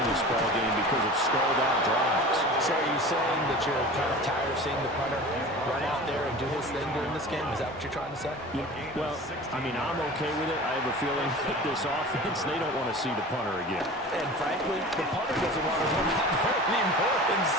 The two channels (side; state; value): both; normal; correlation 0.37